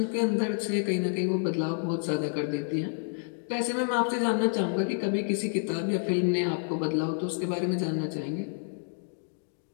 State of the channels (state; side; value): silent; right; digital silence